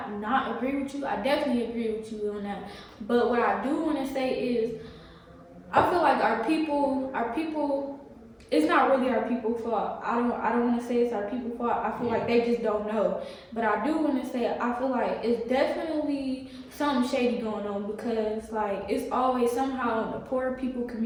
agree with you. I definitely agree with you on that. But what I do want to say is, I feel like our people it's not really our people's fault. I don't want to say it's our people's fault. I feel like they just don't know. But I do want to say I feel like it's definitely something shady going on, because like it's always somehow in the poor people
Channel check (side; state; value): both; identical; correlation 1.00